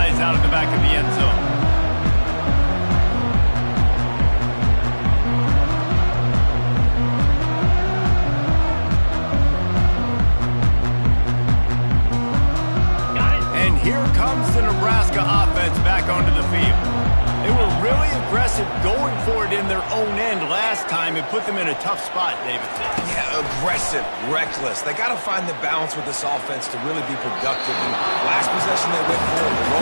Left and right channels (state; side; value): inverted; both; correlation -1.00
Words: out of the back of the end zone. And here comes the Nebraska offense back onto the field. They were really aggressive going for it in their own end last time and put them in a tough spot, David said. Yeah, aggressive, reckless. They got to find the balance with this offense to really be productive. And last possession they went for it, they